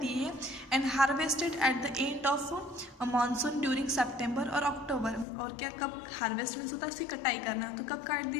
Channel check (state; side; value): drops out; right; at 5.2 s